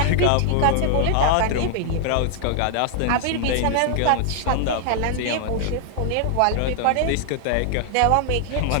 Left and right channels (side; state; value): both; different; correlation 0.00